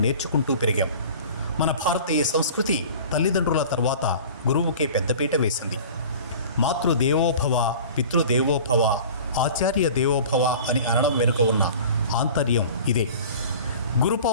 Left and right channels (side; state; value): both; inverted; correlation -0.42